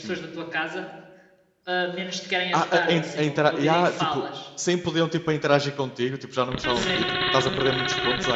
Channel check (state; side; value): identical; both; correlation 1.00